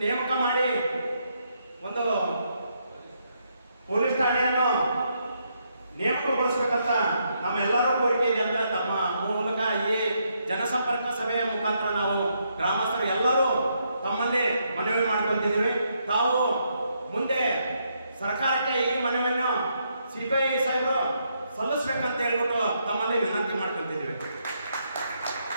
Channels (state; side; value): inverted; both; correlation -0.77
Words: ನೇಮಕ ಮಾಡಿ ಒಂದು ಪೊಲೀಸ್ ಠಾಣೆಯನ್ನು ನೇಮಕಗೊಳಿಸಬೇಕಂತ ನಮ್ಮೆಲ್ಲರೂ ಕೋರಿಕೆ ಇದೆ ಅಂತ ತಮ್ಮ ಮೂಲಕ ಈ ಜನಸಂಪರ್ಕ ಸಭೆಯ ಮುಖಾಂತರ ನಾವು ಗ್ರಾಮಸ್ಥರು ಎಲ್ಲರೂ ತಮ್ಮಲ್ಲಿ ಮನವಿ ಮಾಡ್ಕೊಂತಿದ್ದೀವಿ. ತಾವು ಮುಂದೆ ಸರ್ಕಾರಕ್ಕೆ ಈ ಮನವಿಯನ್ನು CPI ಸಾಹೇಬರು ಸಲ್ಲಿಸ್ಬೇಕಂತ ಹೇಳ್ಬಿಟ್ಟು ತಮ್ಮಲ್ಲಿ ವಿನಂತಿ ಮಾಡ್ಕೊಂತಿದ್ದೀವಿ.